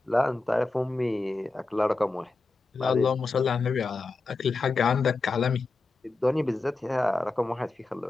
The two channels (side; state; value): right; quieter; 3.5 dB